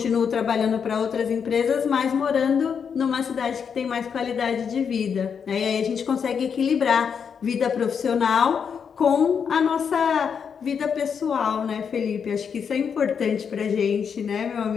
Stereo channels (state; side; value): quieter; right; 6.8 dB